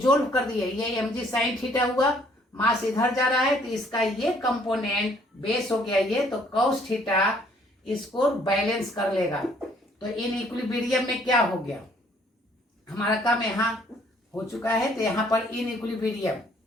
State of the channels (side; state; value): both; normal; correlation 0.62